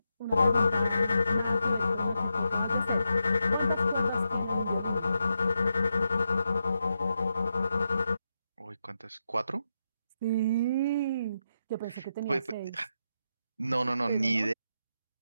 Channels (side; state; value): both; inverted; correlation -0.85